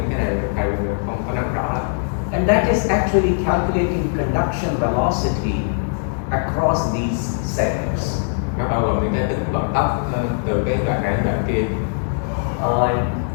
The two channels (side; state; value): right; silent; digital silence